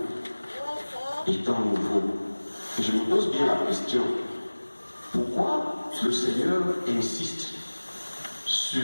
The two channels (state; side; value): inverted; both; correlation -1.00